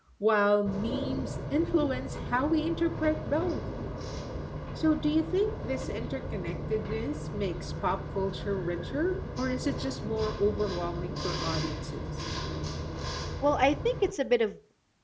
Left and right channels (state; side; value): identical; both; correlation 1.00